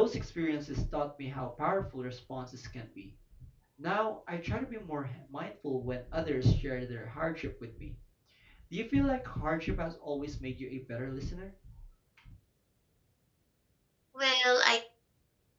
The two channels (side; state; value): both; identical; correlation 1.00